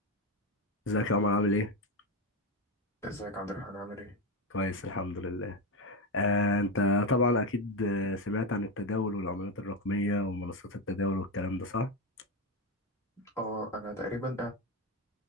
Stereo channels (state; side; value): normal; both; correlation 0.12